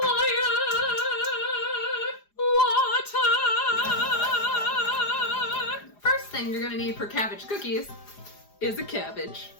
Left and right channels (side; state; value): right; late; 4.9 ms